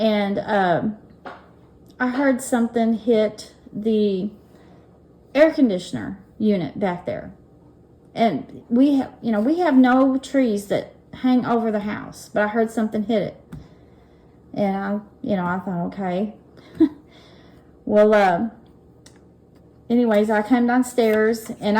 I heard something hit the air conditioner unit back there. And we have no trees that hang over the house, but I heard something hit it. And I thought, okay. Well, anyways, I came downstairs, and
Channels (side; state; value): both; identical; correlation 1.00